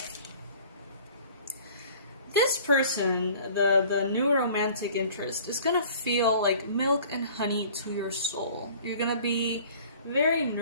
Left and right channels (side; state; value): both; inverted; correlation -0.49